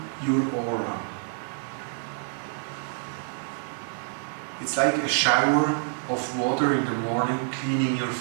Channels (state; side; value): silent; left; 57 dB below the other